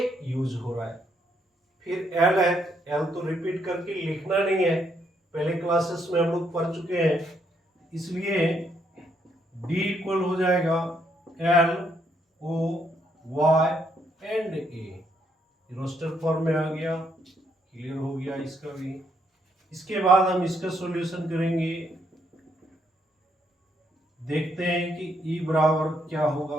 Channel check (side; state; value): both; normal; correlation 0.74